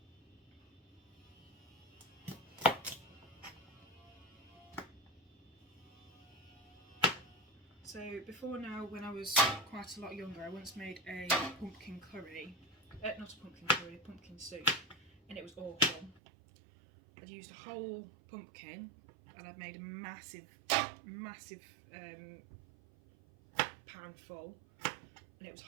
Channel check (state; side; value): drops out; left; at 16.2 s